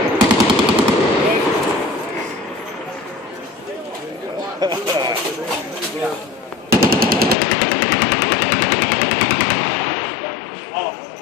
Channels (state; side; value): drops out; right; at 7.4 s